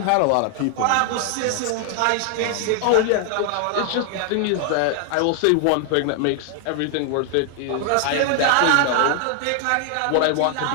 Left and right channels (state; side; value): different; both; correlation 0.00